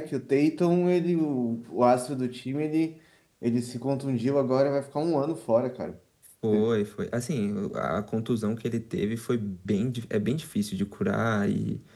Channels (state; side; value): identical; both; correlation 1.00